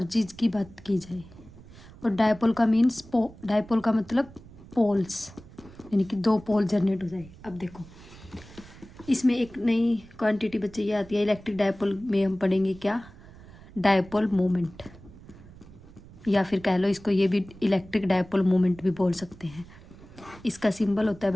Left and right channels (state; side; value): noise; right; rumble, 20 dB below the sound